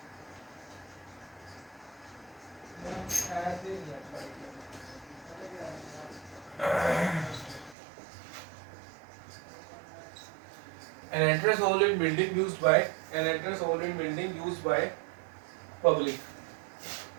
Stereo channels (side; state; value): left; drops out; at 7.8 s